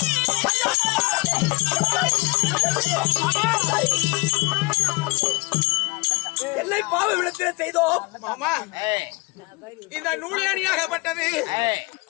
என்னை பாவ விடத்தில் செய்தோம் மாமா இந்த நூலியானியாகப்பட்டது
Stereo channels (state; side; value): quieter; right; 25.7 dB